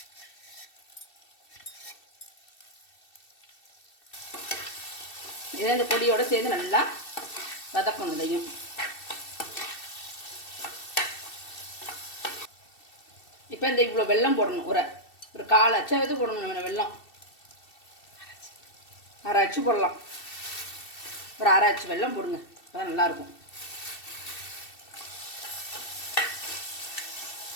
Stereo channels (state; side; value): late; right; 2.7 ms